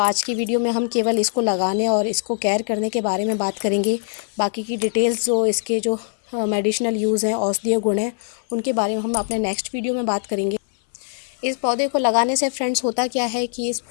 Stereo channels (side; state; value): right; silent; digital silence